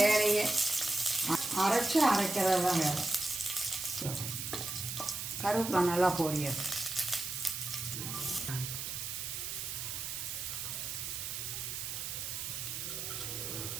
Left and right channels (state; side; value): noise; right; hiss, 5 dB below the sound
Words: வேலையே. அரைக்கிறது தான் வேலை. கருவேப்பிலை நல்லா பொரியாது.